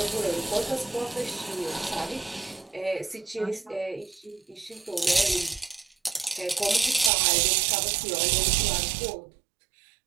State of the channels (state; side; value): drops out; left; at 7.1 s